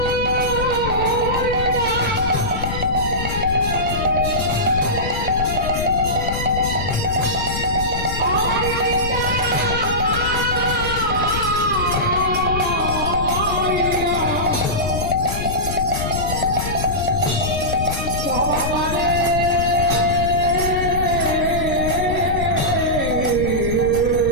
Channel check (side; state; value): left; noise; rumble, 5 dB below the sound